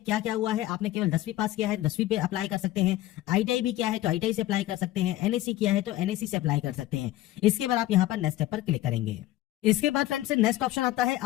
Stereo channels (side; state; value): right; quieter; 15.5 dB